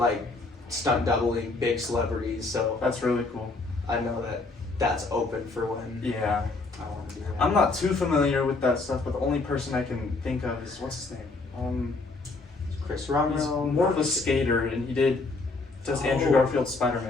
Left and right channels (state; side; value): quieter; right; 3.6 dB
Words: stunt doubling big celebrities. So That's really cool. I know that that's open for when Yeah. I want to do that. I'm not too familiar with that stuff, but the only person I can think of is what's his name? Chris He's Romero. more of a skater, and he does Andrew Oh. Garfield's